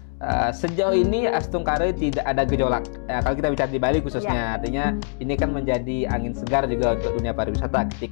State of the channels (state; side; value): silent; right; 63 dB below the other